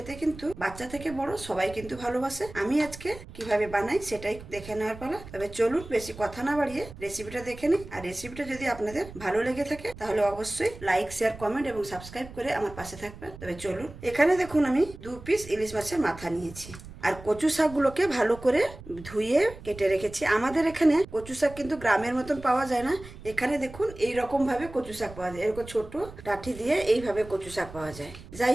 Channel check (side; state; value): right; noise; rumble, 16 dB below the sound